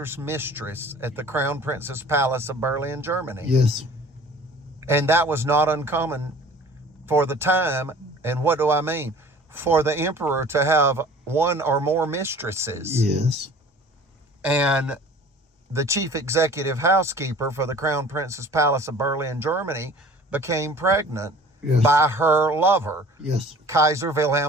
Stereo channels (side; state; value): both; normal; correlation 0.47